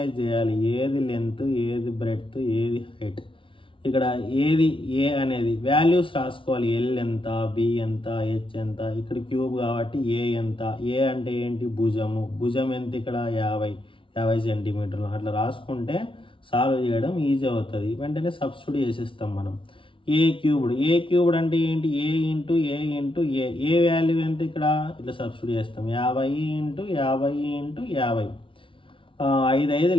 చేయాలి ఏది లెంత్, ఏది బ్రెడ్త్, ఏది హైట్. ఇక్కడ ఏది ఏ అనేది వాల్యూస్ రాసుకోవాలి. ఎల్ ఎంత, బి ఎంత, హెచ్ ఎంత. ఇక్కడ క్యూబ్ కాబట్టి ఏ ఎంత, ఏ అంటే ఏంటి భుజము, భుజం ఎంత ఇక్కడ 50 సెంటీమీటర్లు. అట్లా రాసుకుంటే సాల్వ్ చేయడం ఈజీ అవుతుంది. వెంటనే సబ్స్టిట్యూట్ చేసేస్తాం మనం. ఏ క్యూబ్డ్, ఏ క్యూబ్డ్ అంటే ఏంటి, ఏ ఇంటూ ఏ ఇంటూ ఏ. ఏ వాల్యూ ఎంత ఇక్కడ ఇట్లా సబ్స్టిట్యూట్ చేస్తాం. 50 ఇంటూ 50 ఇంటూ 50, 5 5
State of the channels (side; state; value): right; late; 0.25 ms